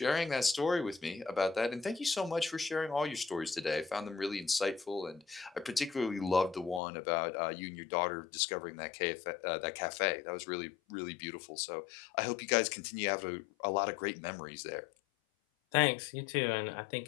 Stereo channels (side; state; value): right; drops out; at 6.8 s